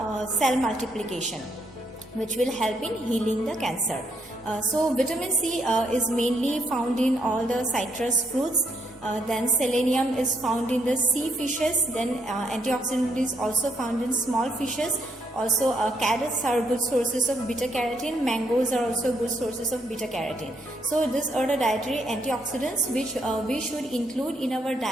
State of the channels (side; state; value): both; normal; correlation 0.74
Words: cell multiplication, which will help in healing the cancer. So vitamin C is mainly found in all the citrus fruits. Then selenium is found in the sea fishes. Then antioxidant is also found in small fishes. Also carrots are good sources of beta carotene. Mangoes are also good sources of beta carotene. So these are the dietary antioxidants which we should include in our